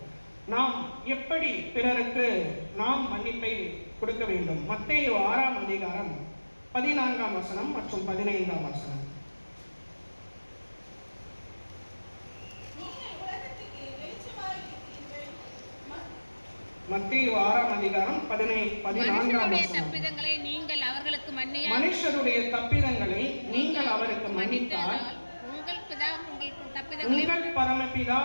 நாம் எப்படி பிறருக்கு நாம் மன்னிப்பை கொடுக்க வேண்டும்? மத்தேயு 6ஆம் அதிகாரம் 14ஆம் வசனம் மற்றும் 15ஆம் வசனம். மத்தேயு மத்தேயு 6ஆம் அதிகாரம் 14ஆம் வசனம். தப்பிதங்களை நீங்கள் அவர்களுக்கு மன்னியா மனுஷருடைய தப்பிதங்களை நீங்கள் அவருக்கு மன்னித்தால் உங்கள் பரமபிதா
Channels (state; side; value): inverted; both; correlation -1.00